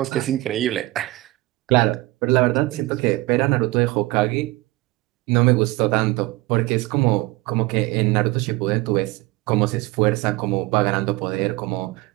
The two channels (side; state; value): left; quieter; 20.0 dB